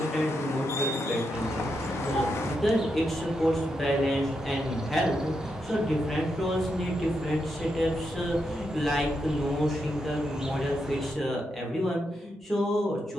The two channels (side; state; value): both; normal; correlation 0.83